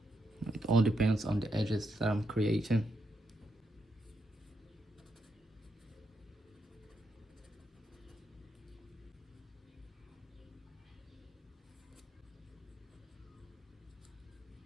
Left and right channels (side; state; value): both; normal; correlation 0.81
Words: it all depends on the edges that I'm creating.